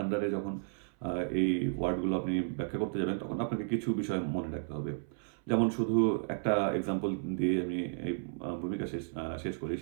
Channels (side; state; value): left; silent; 55 dB below the other